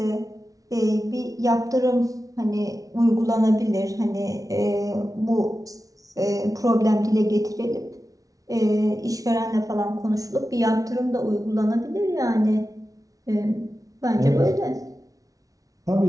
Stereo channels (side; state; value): left; late; 0.17 ms